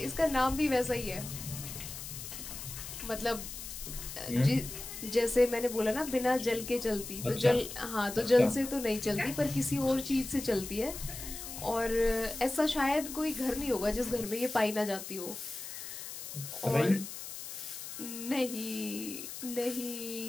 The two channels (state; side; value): noise; left; hiss, 9 dB below the sound